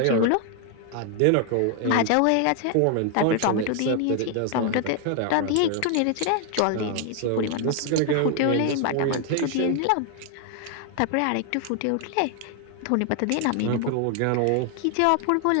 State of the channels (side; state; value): both; different; correlation 0.00